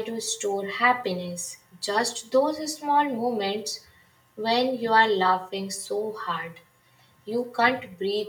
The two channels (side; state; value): both; identical; correlation 1.00